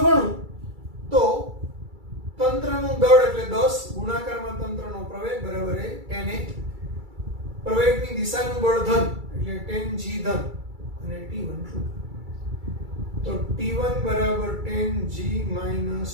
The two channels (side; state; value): left; late; 2.3 ms